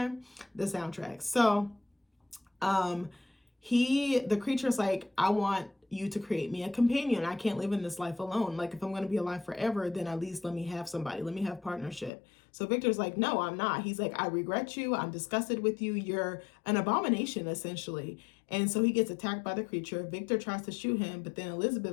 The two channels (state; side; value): drops out; right; at 12.1 s